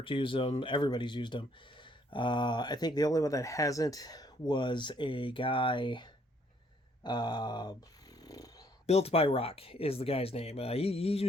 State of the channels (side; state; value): both; normal; correlation 0.66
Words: use them. Everybody's used them. I think the only one that hasn't was a guy. Uh, Built by Rock is the guy's name. He